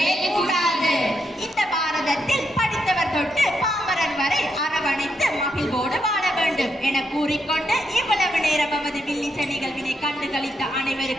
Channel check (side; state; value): both; normal; correlation 0.80